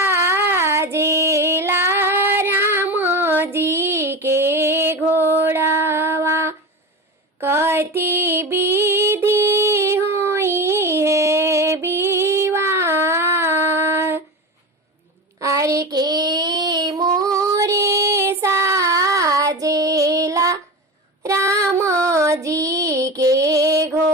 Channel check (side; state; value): both; normal; correlation 0.25